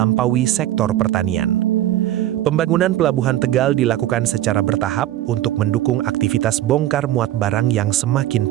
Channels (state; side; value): quieter; left; 13.4 dB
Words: sektor pertanian. Pembangunan Pelabuhan Tegal dilakukan secara bertahap untuk mendukung aktivitas bongkar muat barang yang semakin